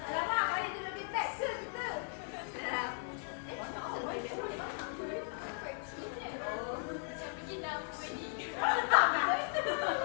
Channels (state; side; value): silent; right; 53 dB below the other